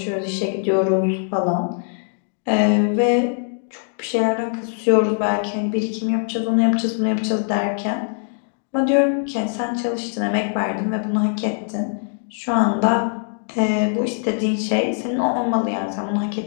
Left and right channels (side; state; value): right; silent; 62 dB below the other